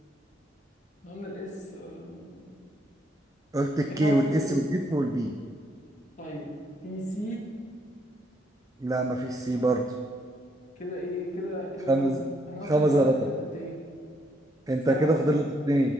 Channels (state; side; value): normal; both; correlation 0.73